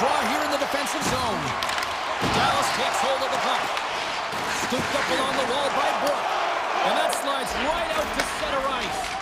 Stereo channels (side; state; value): both; identical; correlation 1.00